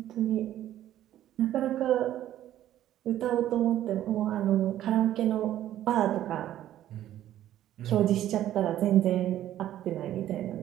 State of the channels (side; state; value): left; quieter; 12.5 dB